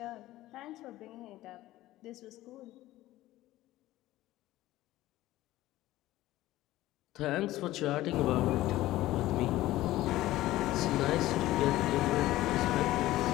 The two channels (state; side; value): quieter; right; 16.0 dB